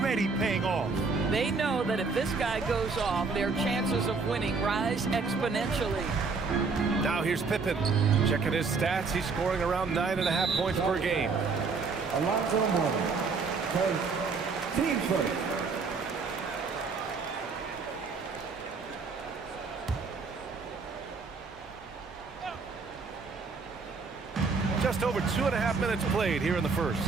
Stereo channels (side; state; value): left; quieter; 4.6 dB